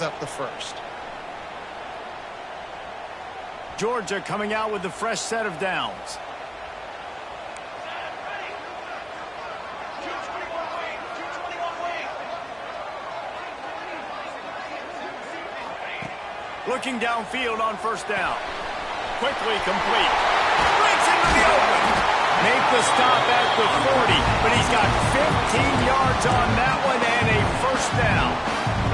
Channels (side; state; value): both; identical; correlation 1.00